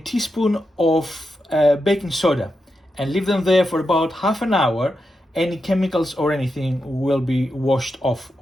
of baking soda, and leave them there for about half an hour. Any chemicals or anything will be washed off,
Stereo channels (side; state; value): both; normal; correlation 0.87